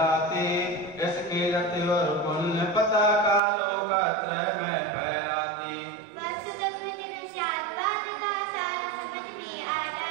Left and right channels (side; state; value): left; drops out; at 3.4 s